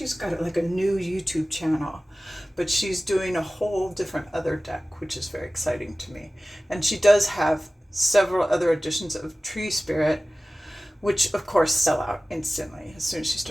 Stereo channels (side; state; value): both; normal; correlation 0.96